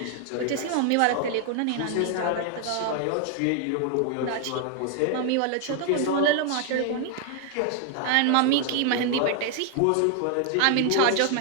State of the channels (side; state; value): both; different; correlation 0.00